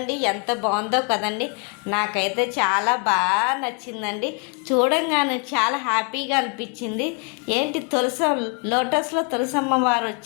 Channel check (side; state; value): right; quieter; 35.0 dB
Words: ఎంత బాగుందో కదండి. నాకైతే చాలా బాగా నచ్చిందండి. చూడంగానే చాలా హ్యాపీగా అనిపించింది. ఏంటి లోటస్లో తులసమ్మ వారు